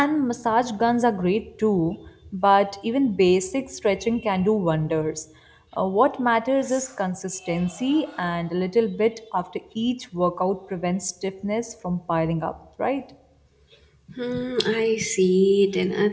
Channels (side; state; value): both; identical; correlation 1.00